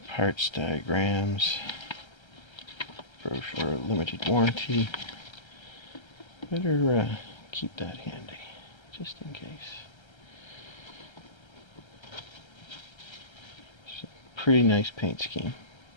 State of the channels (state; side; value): late; right; 1.3 ms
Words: parts diagrams, brochure, limited warranty. Better keep that handy, just in case. It's a pretty nice paint scheme.